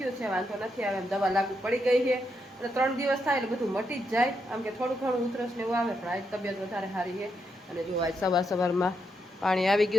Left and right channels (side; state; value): both; normal; correlation 0.81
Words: છે, વાંધો નથી આવે એમ. દવા લાગુ પડી ગઈ છે એટલે 3 દિવસ થાય એટલે બધું મટી જ જાય. આમ કે થોડું ઘણું ઉધરસ ને એવું આવે, પણ આજ તબિયત વધારે સારી છે. અને જો આજ સવારમાં પાણી આવી